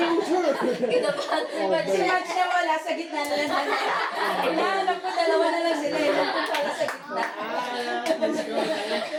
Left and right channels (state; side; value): identical; both; correlation 1.00